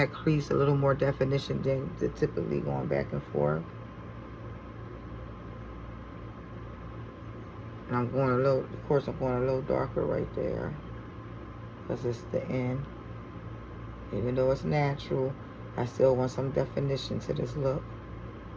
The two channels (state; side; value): identical; both; correlation 1.00